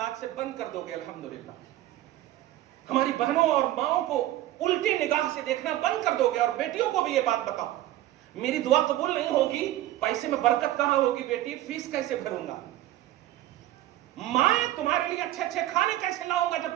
آج سے بند کر دو گے الحمدللہ. ہماری بہنوں اور ماؤں کو الٹی نگاہ سے دیکھنا بند کر دو گے. اور بیٹیوں کو بھی یہ بات بتاؤ، میری دعا قبول نہیں ہوگی، پیسے میں برکت کہاں ہوگی بیٹی، فیس کیسے بھروں گا، ماں تمہارے لیے اچھے اچھے کھانے کیسے لاؤں گا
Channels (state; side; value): quieter; left; 14.5 dB